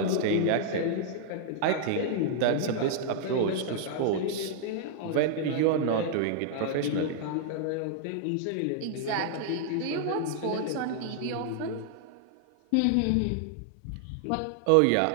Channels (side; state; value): both; different; correlation -0.01